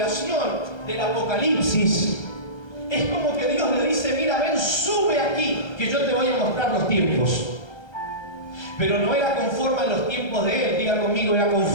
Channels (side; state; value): right; late; 1.3 ms